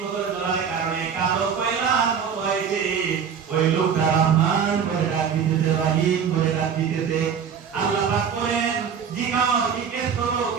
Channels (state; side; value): quieter; left; 7.2 dB